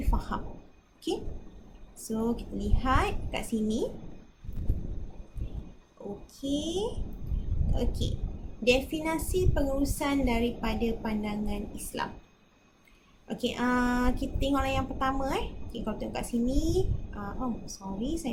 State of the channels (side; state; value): both; identical; correlation 1.00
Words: faham. So kita lihat kat sini. Definisi pengurusan daripada pandangan Islam. Kita tengoklah yang pertama. Kalau tengok kat sini,